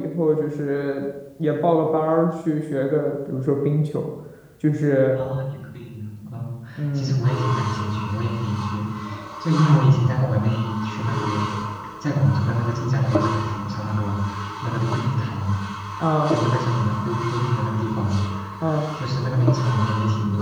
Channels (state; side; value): identical; both; correlation 1.00